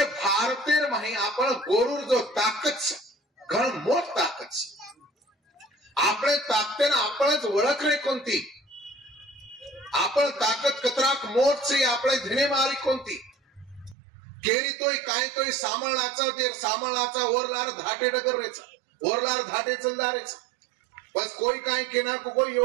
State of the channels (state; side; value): drops out; left; at 14.0 s